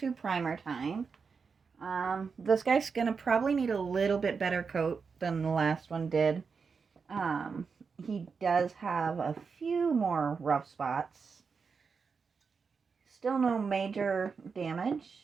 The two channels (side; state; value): left; quieter; 5.4 dB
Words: primer time. This guy's gonna probably need a little bit better coat than the last one did. Um, he does have a few more rough spots. Still no major